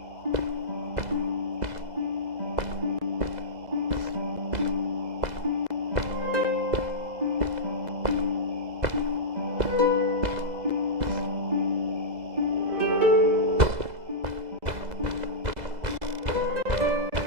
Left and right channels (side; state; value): left; late; 2.0 ms